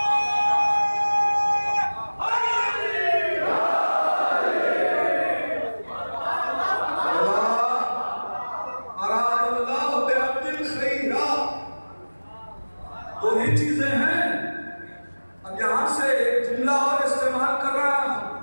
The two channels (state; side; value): inverted; both; correlation -1.00